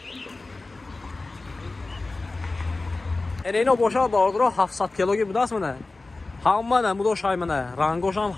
اینو باشه باردارو 700 کیلوگی بداست منه همه نمودو شای منه رنگوش هم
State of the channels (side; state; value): right; quieter; 3.3 dB